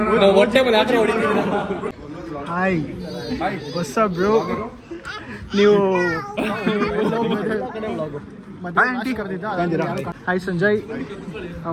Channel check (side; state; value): both; identical; correlation 1.00